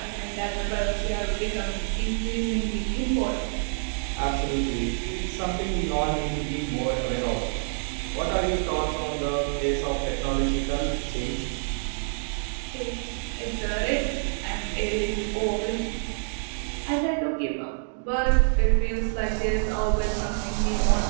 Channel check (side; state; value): left; silent; digital silence